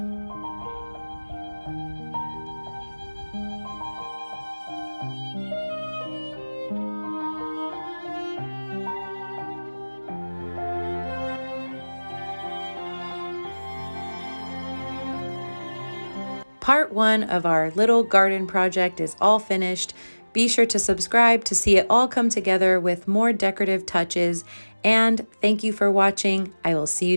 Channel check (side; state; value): both; inverted; correlation -1.00